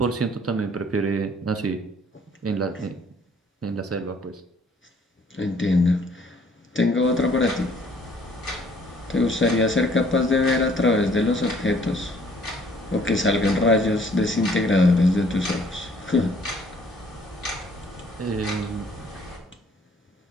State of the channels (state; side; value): normal; both; correlation 0.60